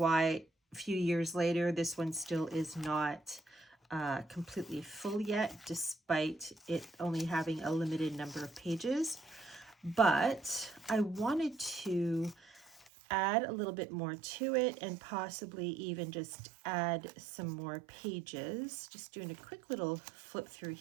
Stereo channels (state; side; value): drops out; left; at 12.9 s